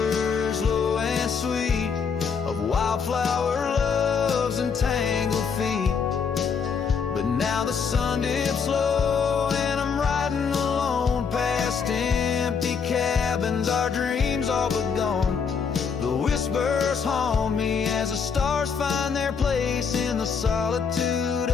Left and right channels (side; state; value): right; quieter; 6.1 dB